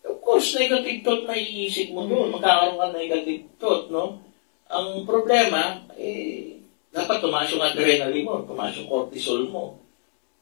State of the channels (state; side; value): silent; right; digital silence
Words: Of course, negative thought na iisip mo doon. Magkakaroon ka ng negative thought, no? Ang problema, dapat tumaas yung adrenaline mo, tumaas yung cortisol mo.